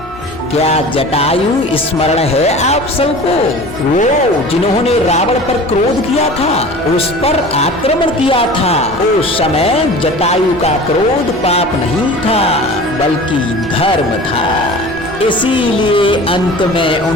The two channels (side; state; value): left; noise; hum, 21 dB below the sound